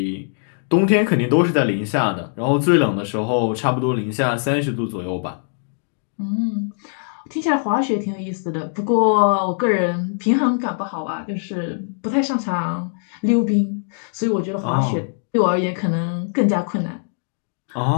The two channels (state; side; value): silent; right; 65 dB below the other